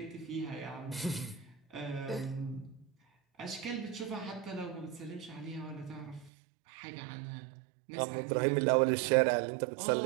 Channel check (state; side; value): drops out; left; at 6.3 s